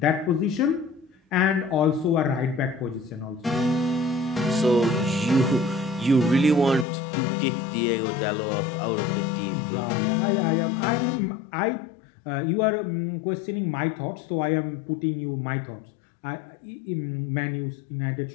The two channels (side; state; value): right; drops out; at 6.9 s